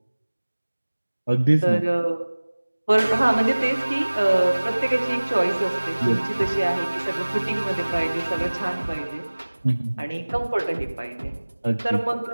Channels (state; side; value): inverted; both; correlation -1.00